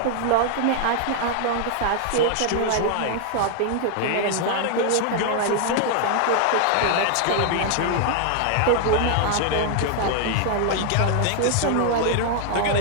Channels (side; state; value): both; different; correlation 0.00